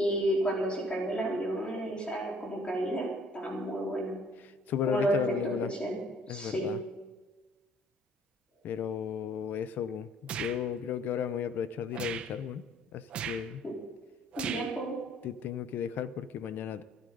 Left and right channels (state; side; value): normal; both; correlation 0.58